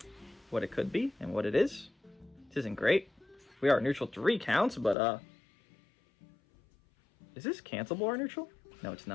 what it could be and what it is. This isn't great. We are neutral 3 counts, but is this cancelable, our neutral? No, it's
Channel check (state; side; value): drops out; right; at 5.0 s